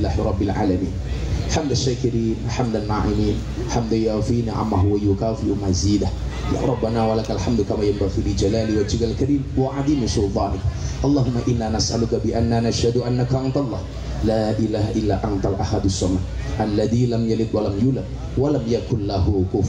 rabbil alamin. Hamdan syakirin, hamdan na'imin, hamdan yafi ni'amahu wa yukafi mazidah. Ya Rabbana walakal hamdu kama yanbaghi li jalali wajhikal karim wa 'azimi sultanik. Allahumma inna nas'aluka bi anna nashhadu annaka antallah la ilaha illa antal ahadus samad alladzi lam yalid wa lam yulad wa lam yakul lahu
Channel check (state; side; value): identical; both; correlation 1.00